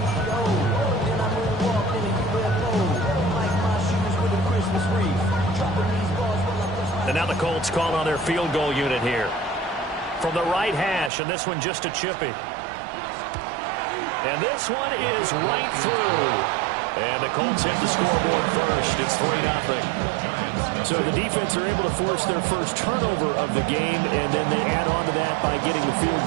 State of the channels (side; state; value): left; drops out; at 11.1 s